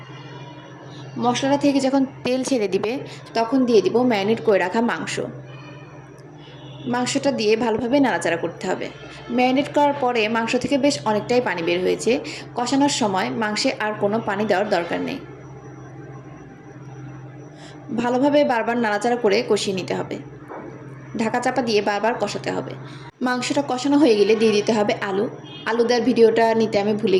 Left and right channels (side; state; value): both; identical; correlation 1.00